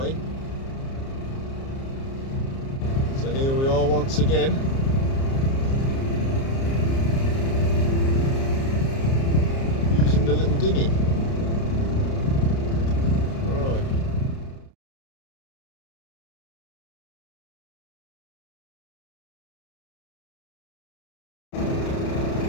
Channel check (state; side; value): late; right; 30 ms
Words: So here we are once again. Using the little dinghy. Alright.